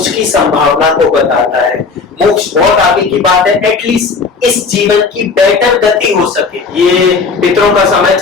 की संभावना को बताता है। मोक्ष बहुत आगे की बात है, एटलीस्ट इस जीवन की बेटर गति हो सके। ये पितरों का समय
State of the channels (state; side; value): quieter; right; 4.7 dB